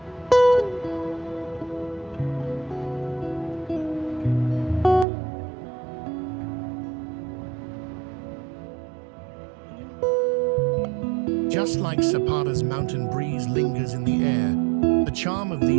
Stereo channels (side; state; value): left; drops out; at 5.1 s